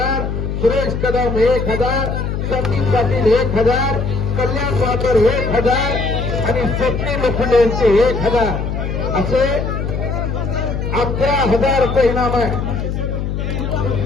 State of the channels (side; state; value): left; noise; hum, 3 dB below the sound